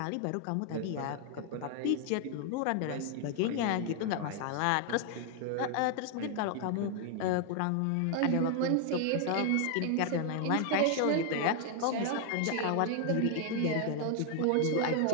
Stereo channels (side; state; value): both; different; correlation 0.00